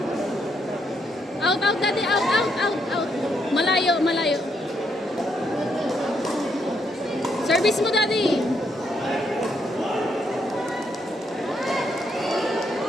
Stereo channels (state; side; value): normal; both; correlation 0.75